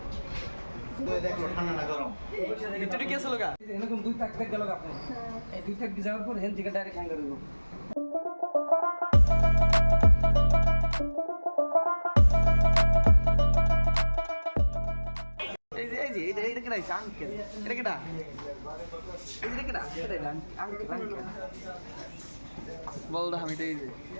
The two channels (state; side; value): inverted; both; correlation -1.00